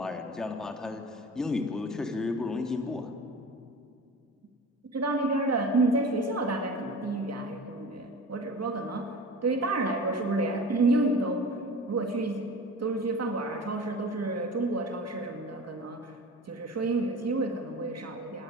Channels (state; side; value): normal; both; correlation 0.36